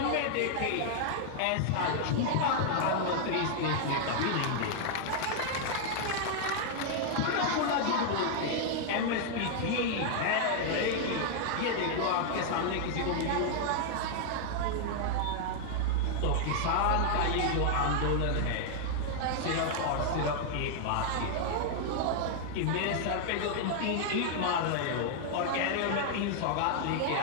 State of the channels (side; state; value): both; different; correlation 0.00